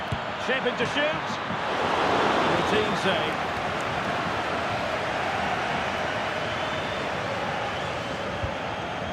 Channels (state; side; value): identical; both; correlation 1.00